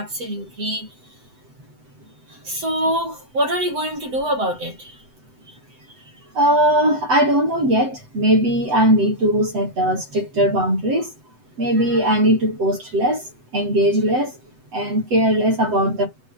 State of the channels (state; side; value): late; left; 7.9 ms